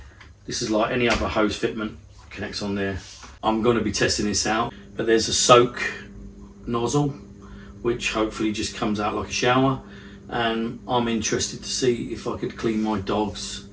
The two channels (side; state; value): both; identical; correlation 1.00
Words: this is like any other hose fitment, connects on there. I'm going to be testing this out, but there's a soak nozzle, which hopefully just comes out like a shower, and I'm interested to see if I could clean my dogs